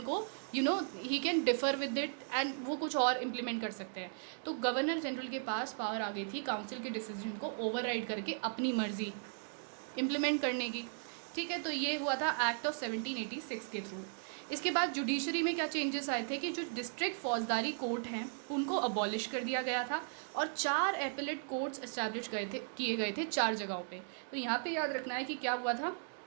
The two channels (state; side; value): silent; left; digital silence